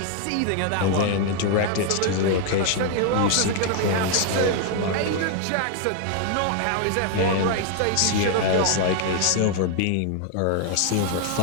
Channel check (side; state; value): both; different; correlation 0.00